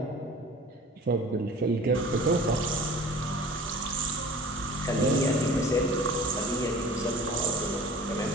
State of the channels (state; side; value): normal; both; correlation 0.43